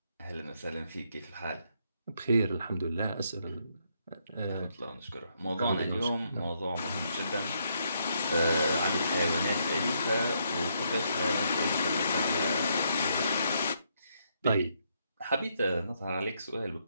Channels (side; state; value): both; inverted; correlation -0.75